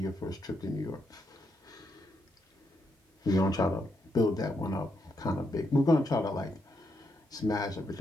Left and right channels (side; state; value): both; normal; correlation 0.80